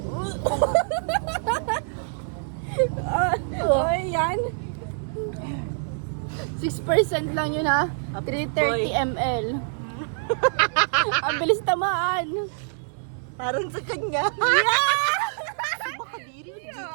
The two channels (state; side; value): silent; left; digital silence